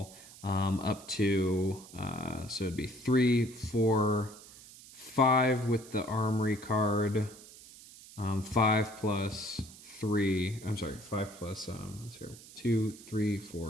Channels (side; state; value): right; noise; hiss, 19 dB below the sound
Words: up to, so it'd be 3, 4, 5 with the Armory card, 5 plus 3, I'm sorry, 5 plus, 2, 3,